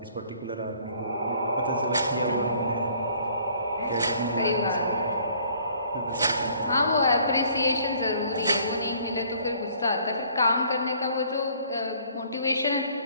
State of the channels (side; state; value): both; inverted; correlation -0.58